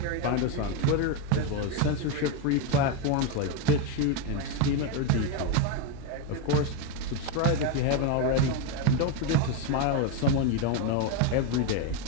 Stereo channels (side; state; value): both; different; correlation 0.03